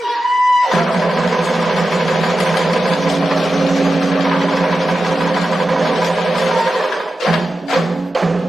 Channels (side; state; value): both; normal; correlation 0.92